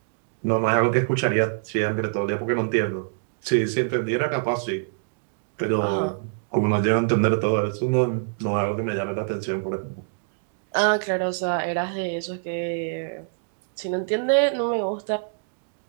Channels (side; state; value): left; silent; digital silence